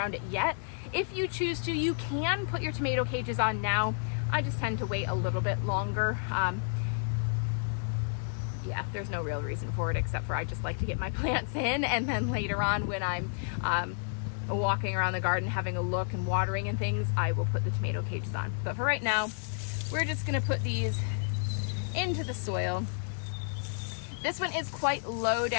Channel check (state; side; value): silent; right; digital silence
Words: it yet. If you choose to, you can put your tomato cages on now. I just tend to wait a little bit longer. Yeah, there's no real reason for it except for I just like to get my plants in, and then later on when I'm walking around the garden having a look and watering and things, I will put the tomato cages on. But for right now, we're just gonna put these into the soil. This one is quite low